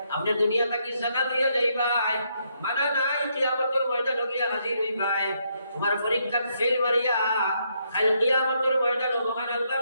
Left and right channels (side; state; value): both; inverted; correlation -0.75